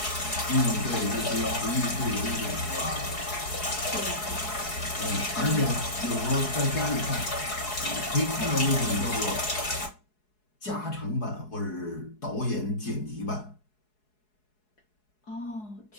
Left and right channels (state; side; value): late; right; 4.7 ms